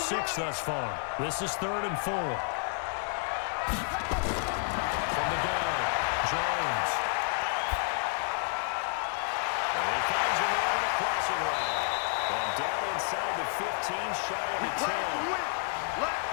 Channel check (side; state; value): right; silent; 58 dB below the other